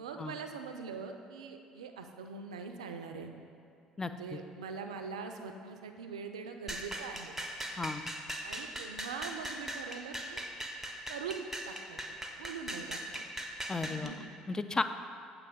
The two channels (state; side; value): normal; both; correlation 0.52